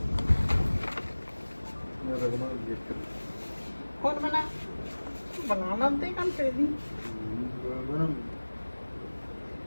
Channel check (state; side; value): inverted; both; correlation -1.00